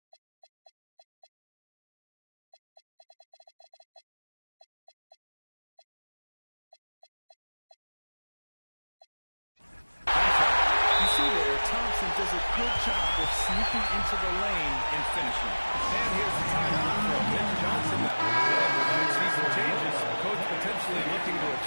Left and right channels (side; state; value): both; inverted; correlation -1.00